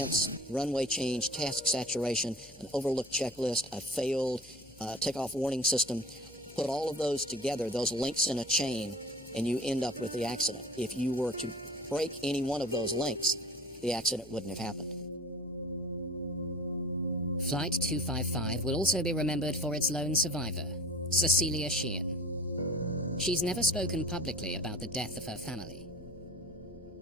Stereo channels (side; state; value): left; noise; hum, 23 dB below the sound